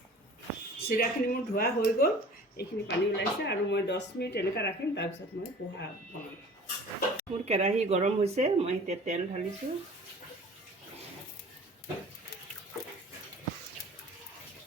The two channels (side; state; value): both; normal; correlation 0.45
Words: চিৰাখিনি মোৰ ধোৱা হৈ গ'ল এইখিনি পানী ওলাইছে আৰু মই 10 মিনিট এনেকৈ ৰাখিম তাৰপিছত মই পোহা বনাম মোৰ কেৰাহী গৰম হৈছে মই এতিয়া তেল ঢালিছোঁ